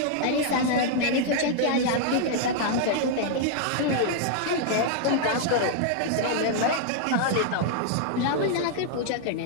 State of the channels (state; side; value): different; both; correlation 0.00